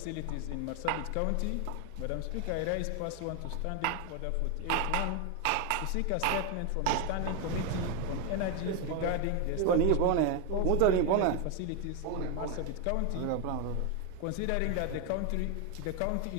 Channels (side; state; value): both; different; correlation 0.01